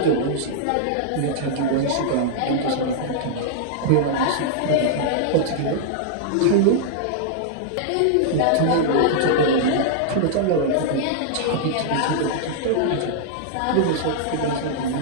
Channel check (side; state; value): both; different; correlation -0.01